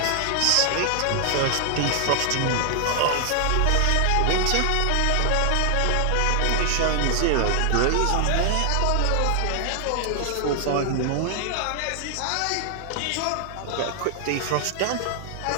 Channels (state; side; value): different; both; correlation 0.00